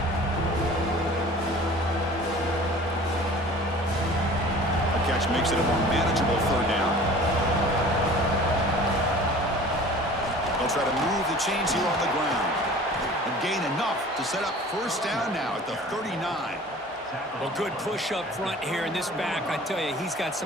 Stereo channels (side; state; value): both; normal; correlation 0.44